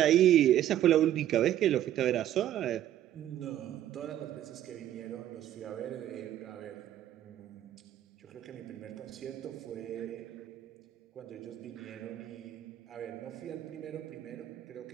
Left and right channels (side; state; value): left; quieter; 12.0 dB